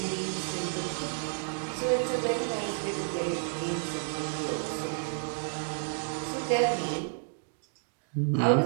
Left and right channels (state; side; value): silent; left; digital silence